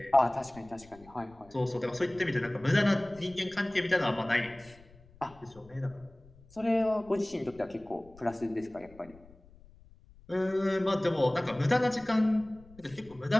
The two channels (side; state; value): left; noise; rumble, 24 dB below the sound